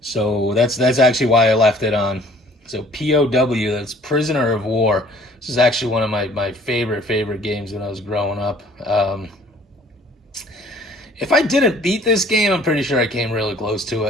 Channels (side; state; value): both; normal; correlation 0.54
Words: So that's actually why I left it on. So POW, that's Prisoner of War. This is actually one of my favorite games when I was growing up. If I didn't beat this game, I'm pretty sure I came really close to